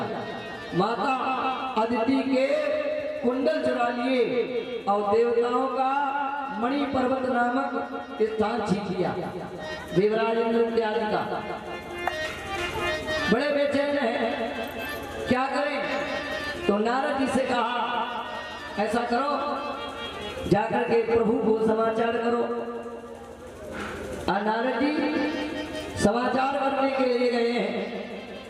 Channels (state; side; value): identical; both; correlation 1.00